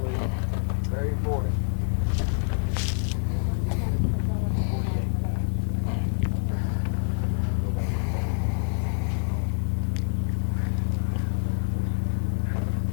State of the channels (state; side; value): silent; right; digital silence